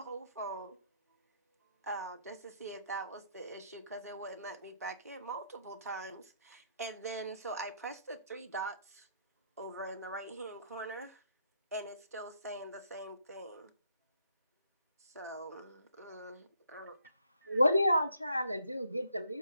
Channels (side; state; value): both; inverted; correlation -0.72